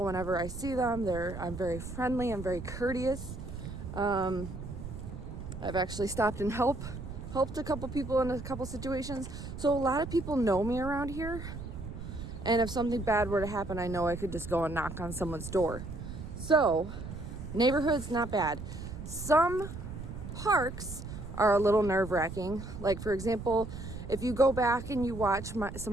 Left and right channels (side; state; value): right; noise; rumble, 9 dB below the sound